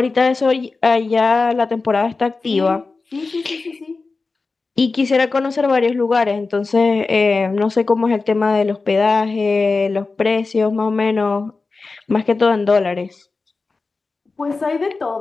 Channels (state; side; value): quieter; right; 4.0 dB